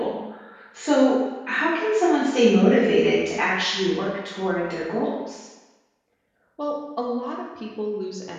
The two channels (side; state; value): both; identical; correlation 1.00